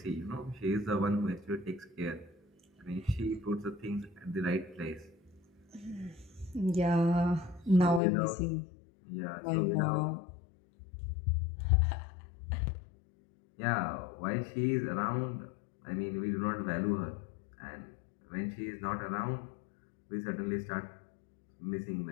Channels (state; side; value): drops out; right; at 8.0 s